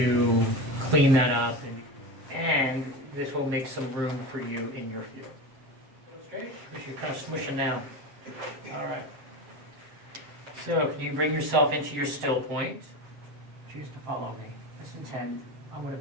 clean that up, and this will make some room for you in your field. Okay? You're kind of smushing now. All right. So can you bring yourself into your still point? Choose to follow me. Just intend. I'm going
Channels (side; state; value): left; late; 7.7 ms